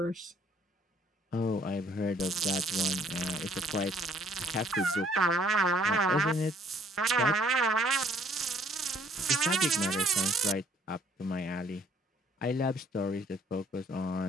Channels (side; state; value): both; normal; correlation 0.61